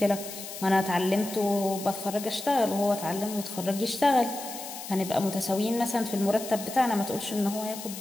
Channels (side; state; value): left; noise; hiss, 10 dB below the sound